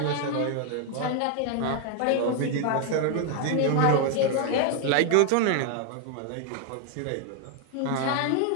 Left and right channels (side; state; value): both; different; correlation 0.01